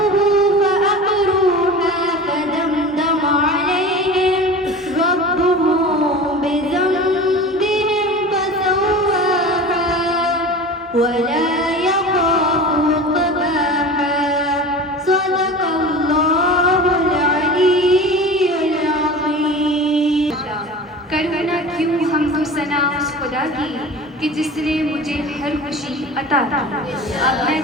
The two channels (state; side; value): normal; both; correlation 0.35